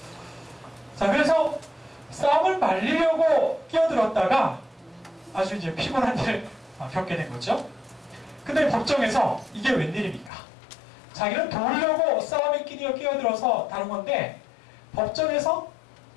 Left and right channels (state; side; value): drops out; right; at 10.3 s